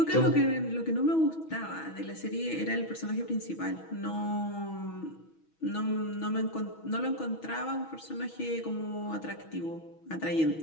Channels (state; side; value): late; right; 6.2 ms